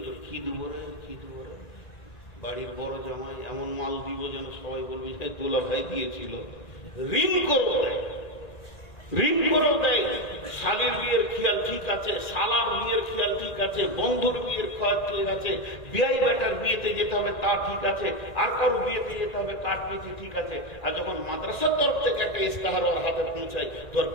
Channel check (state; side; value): late; right; 1.9 ms